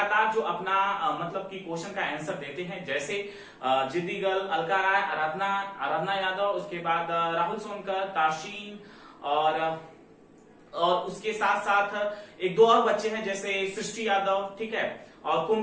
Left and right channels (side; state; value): both; identical; correlation 1.00